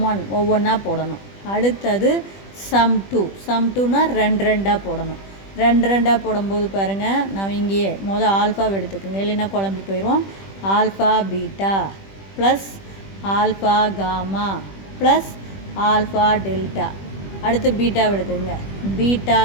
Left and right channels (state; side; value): late; right; 20 ms